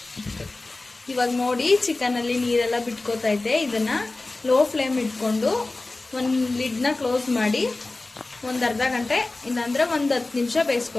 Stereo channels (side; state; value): right; quieter; 3.1 dB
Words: ಇವಾಗ ನೋಡಿ ಚಿಕನಲ್ಲಿ ನೀರೆಲ್ಲ ಬಿಟ್ಕೋತೈತೆ. ಇದನ್ನು ಲೋ ಫ್ಲೇಮ್ ಇಟ್ಕೊಂಡು ಒಂದು ಲಿಡ್ನ ಕ್ಲೋಸ್ ಮಾಡಿ ಒಂದು ಅರ್ಧ ಗಂಟೆ ಇಲ್ಲಾಂದರೆ ಒಂದು 10 ನಿಮಿಷ